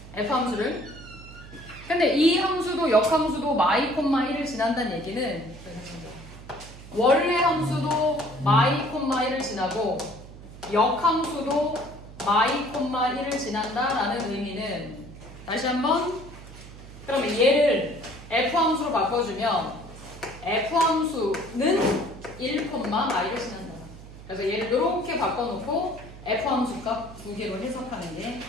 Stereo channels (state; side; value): noise; right; hum, 16 dB below the sound